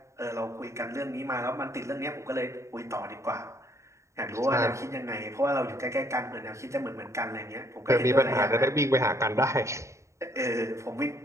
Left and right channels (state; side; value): late; left; 0.14 ms